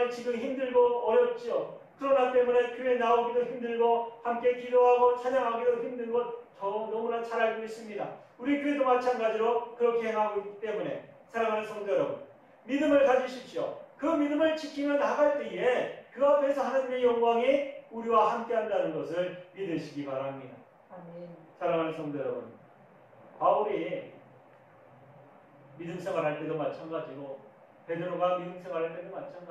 지금 힘들고 어렵죠. 그러나 때문에 교회 나오기도 힘들고 함께 기도하고 찬양하기도 힘든 것 저 너무나 잘 알고 있습니다. 우리 교회도 마찬가지로 그렇게 행하고 있기 때문에 사랑하는 성도 여러분, 믿음을 가지십시오. 그 믿음을 지키며 나갈 때에 그 앞에서 하나님의 영광이 우리와 함께 한다는 것을 믿으시기 바랍니다. 아멘. 사랑하는 성도 여러분, 바울이 믿음 생활할 때도 마찬가지고 베드로가 믿음 생활할 때도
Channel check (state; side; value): identical; both; correlation 1.00